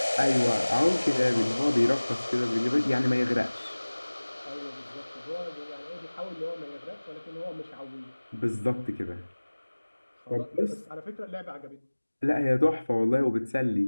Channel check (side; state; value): both; inverted; correlation -1.00